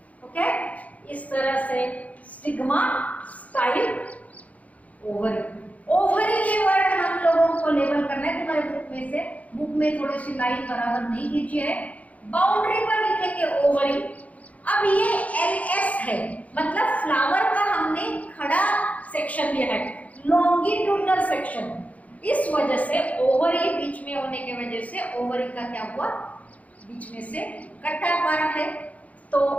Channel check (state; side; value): late; right; 0.070 ms